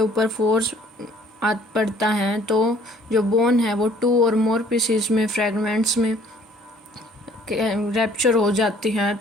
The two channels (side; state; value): both; normal; correlation 0.57